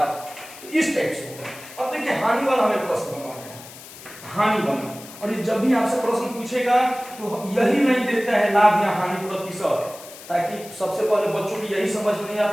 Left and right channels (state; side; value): noise; left; hiss, 17 dB below the sound